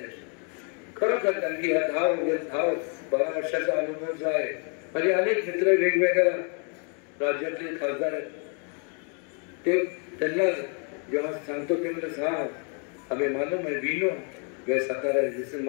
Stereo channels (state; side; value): quieter; right; 39.3 dB